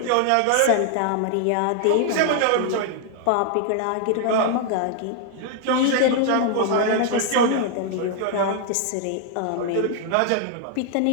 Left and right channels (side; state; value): both; different; correlation 0.00